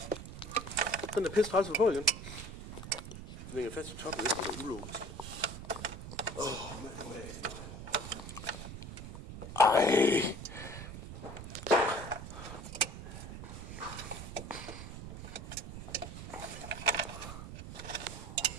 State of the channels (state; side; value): noise; right; rumble, 10 dB below the sound